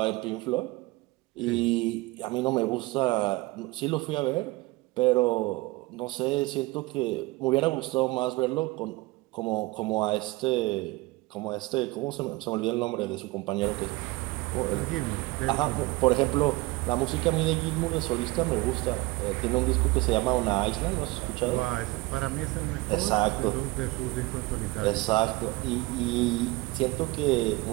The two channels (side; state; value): left; quieter; 21.6 dB